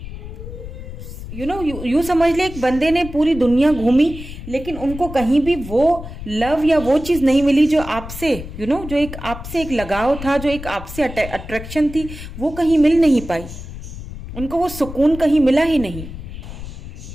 यू समझ ले, एक बंदे ने पूरी दुनिया घूमी लेकिन उनको कहीं भी वो लव या वो चीज नहीं मिली जो आपसे जो एक आपसे एक लगाव था, जो एक आपसे अट्रैक्शन थी, वो कहीं मिल नहीं पाई। उनको वो सुकून कहीं मिला ही नहीं।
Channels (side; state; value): left; noise; rumble, 11 dB below the sound